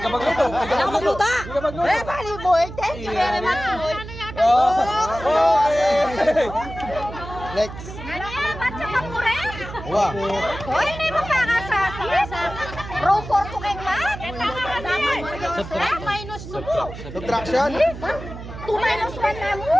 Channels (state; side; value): noise; right; hum, 11 dB below the sound